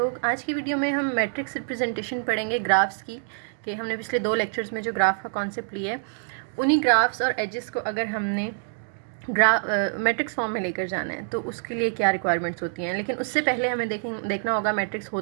आज की वीडियो में हम मैट्रिक्स रिप्रेजेंटेशन पढ़ेंगे ग्राफ्स की। कि हमने पिछले 2 लेक्चर्स में जो ग्राफ का कॉन्सेप्ट लिया है, उन्हीं ग्राफ्स और एजेस को अगर हमने मैट्रिक्स फॉर्म में लेकर जाना है तो उसके लिए क्या रिक्वायरमेंट्स होती हैं। लेकिन उससे पहले हमें देखना होगा मैट्रिक्स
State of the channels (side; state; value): left; silent; digital silence